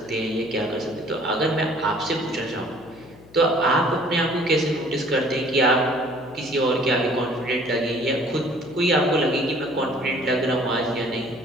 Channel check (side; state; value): left; noise; hum, 23 dB below the sound